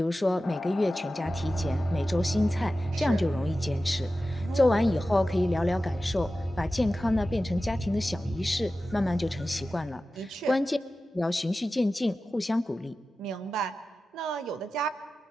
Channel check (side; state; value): both; normal; correlation 0.94